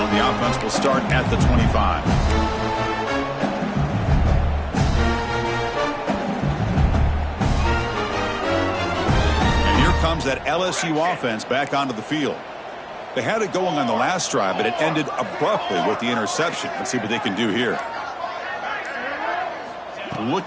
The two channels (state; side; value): identical; both; correlation 1.00